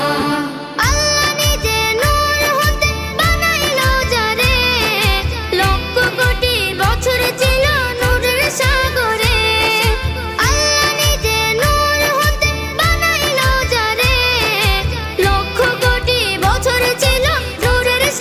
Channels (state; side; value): identical; both; correlation 1.00